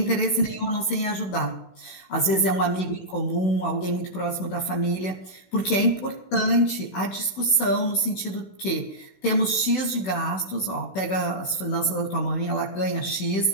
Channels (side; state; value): right; late; 16 ms